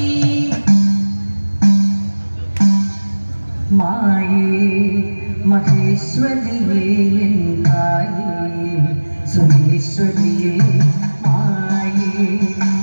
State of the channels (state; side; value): inverted; both; correlation -1.00